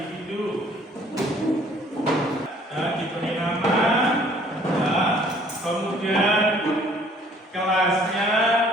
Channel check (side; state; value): both; normal; correlation 0.58